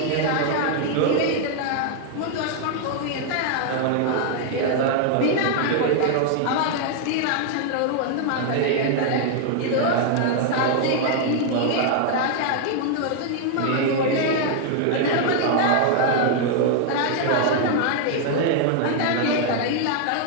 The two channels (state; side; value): different; both; correlation 0.00